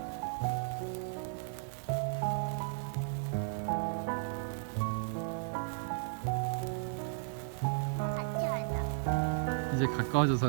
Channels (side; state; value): left; silent; digital silence